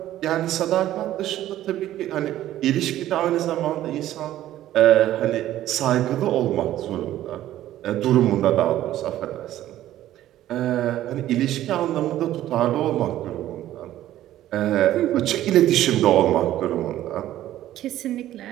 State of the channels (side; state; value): left; quieter; 13.3 dB